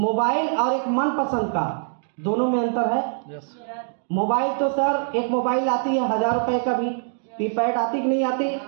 और एक मनपसंद का, दोनों में अंतर है। मोबाइल तो सर एक मोबाइल आती है 1000 रुपए का भी, कीपैड आती कि नहीं आती,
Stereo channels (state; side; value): silent; left; digital silence